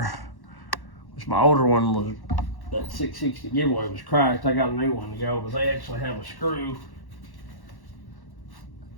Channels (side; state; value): right; late; 1.1 ms